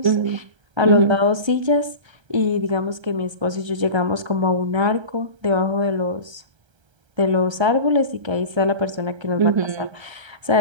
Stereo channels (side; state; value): left; late; 1.3 ms